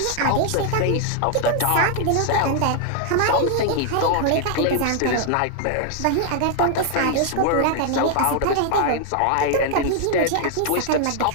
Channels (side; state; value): both; different; correlation 0.00